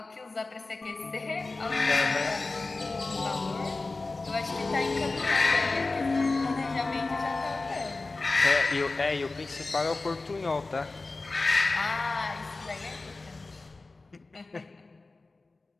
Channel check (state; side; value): quieter; right; 3.5 dB